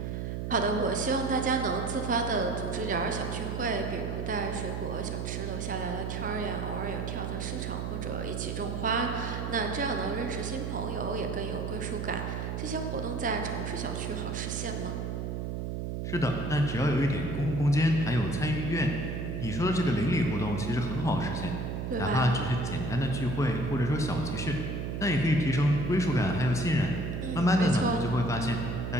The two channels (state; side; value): noise; right; hum, 3 dB below the sound